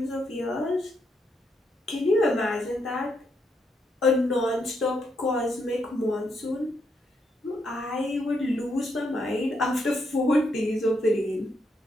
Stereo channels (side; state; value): both; normal; correlation 0.78